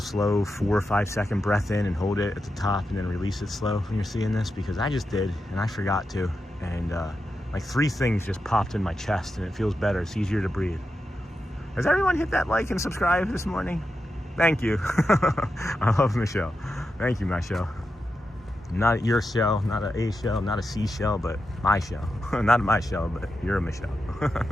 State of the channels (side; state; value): both; normal; correlation 0.88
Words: 4 or 5 second breath in and hold it at the top and then release it slow when you're seeing this? Because I just did and I forgot to. And like 3 things just popped in my chest and it feels better. It's easier to breathe. Has everyone hit that like and subscribe this morning? Thank you. I love Michelle. Thank you, Michelle. Not your shell, not a shell, not a C shell, but my shell. Not my shell, but you're a Michelle.